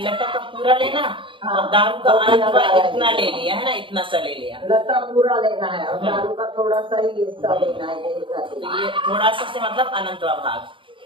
लता का पूरा लेना और दारू का अनंतवा इतना ले लिया है ना, इतना सा ले लिया। लता पूरा लेना है और दारू का थोड़ा सा ही हिस्सा लेना है। तो ये थोड़ा सा से मतलब अनंतवा भाग,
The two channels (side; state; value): left; late; 0.25 ms